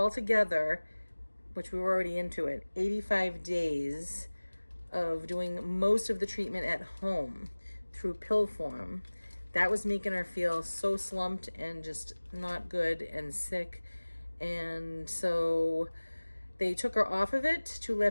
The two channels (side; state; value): both; inverted; correlation -1.00